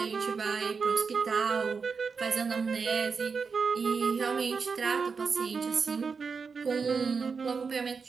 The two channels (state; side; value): quieter; left; 5.3 dB